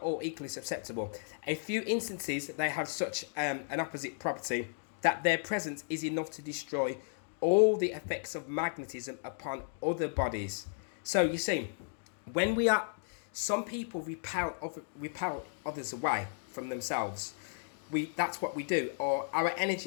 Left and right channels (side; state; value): right; silent; digital silence